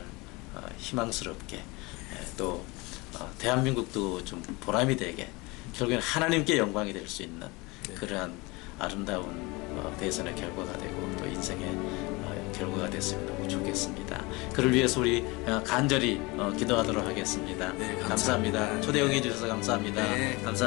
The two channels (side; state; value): right; quieter; 24.7 dB